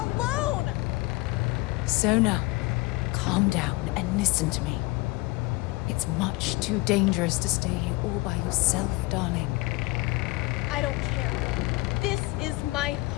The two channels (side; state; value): right; quieter; 22.5 dB